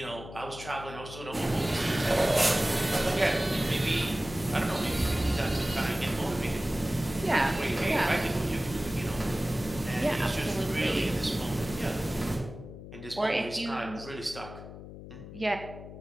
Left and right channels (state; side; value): noise; left; hum, 13 dB below the sound